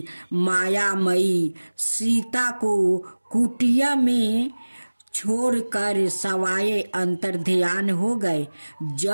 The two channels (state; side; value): inverted; both; correlation -1.00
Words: मायामयी सीता को कुटिया में छोड़कर सवाए अंतर्ध्यान हो गए।